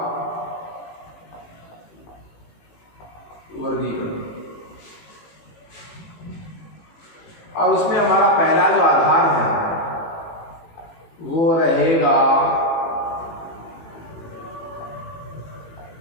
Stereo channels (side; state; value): right; late; 18 ms